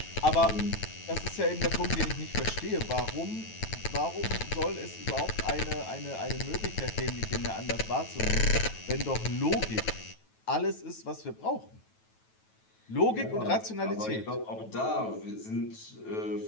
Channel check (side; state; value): right; late; 9.2 ms